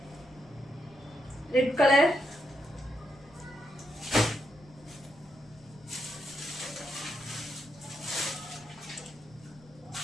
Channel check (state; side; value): noise; left; rumble, 24 dB below the sound